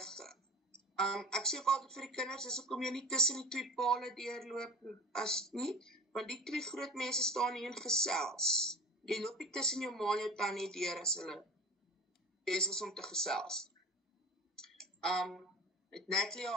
Ek sê ook altyd vir die kinders, as hoekom jy nie tussen die twee pale deurloop as nie, want die twee groot mense staan hier en gesels. Jy loop nie tussen jou ma en jou tannie deur as hulle besig is om te gesels. Het Natalie jou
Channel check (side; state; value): both; normal; correlation 0.35